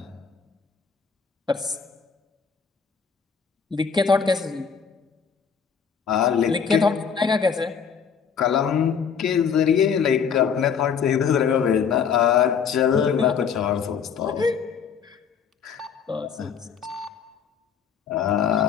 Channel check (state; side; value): quieter; right; 6.8 dB